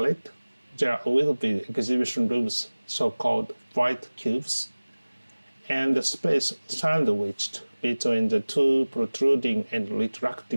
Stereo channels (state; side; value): inverted; both; correlation -1.00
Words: there will be exhibition rooms, so-called white cubes, and the space sandwiched between the 2 protruding and